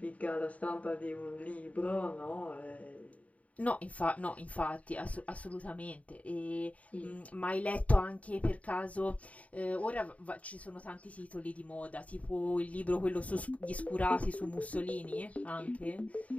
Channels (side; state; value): right; late; 0.068 ms